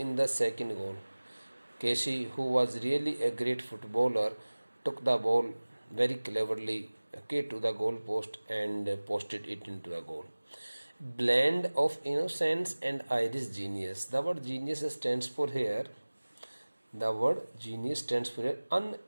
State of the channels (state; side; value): inverted; both; correlation -1.00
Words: the second goal. Casey, who was really a great footballer, took the ball very cleverly, okay, to the goal post and posted it into the goal. Blend of innocence and Irish genius. The word genius stands for here